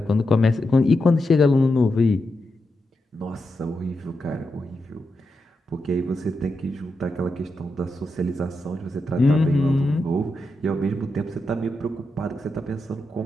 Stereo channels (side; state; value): both; normal; correlation 0.86